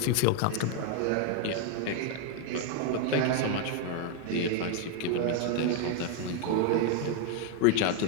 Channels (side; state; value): both; different; correlation 0.01